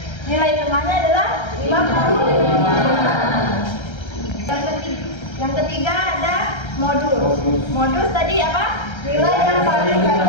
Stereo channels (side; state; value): right; late; 1.3 ms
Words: nilai tengahnya adalah 55. Yang ketiga ada modus. Modus tadi apa? Nilai yang paling